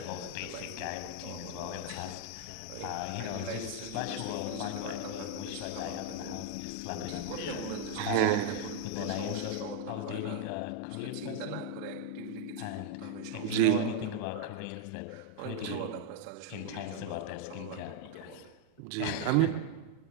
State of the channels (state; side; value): different; both; correlation 0.00